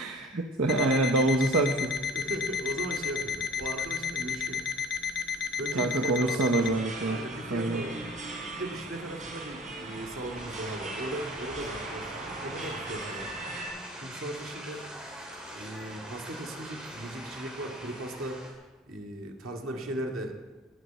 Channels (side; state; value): both; normal; correlation 0.45